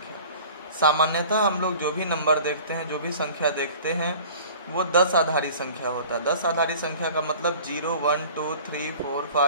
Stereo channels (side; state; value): both; inverted; correlation -0.45